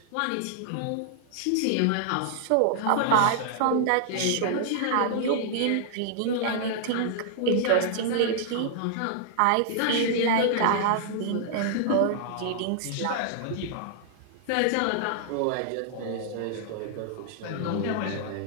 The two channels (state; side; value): different; both; correlation -0.01